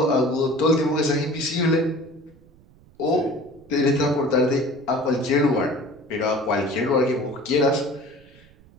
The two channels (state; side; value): noise; right; rumble, 27 dB below the sound